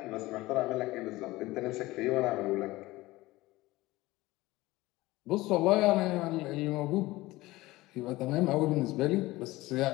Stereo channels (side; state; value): right; quieter; 19.1 dB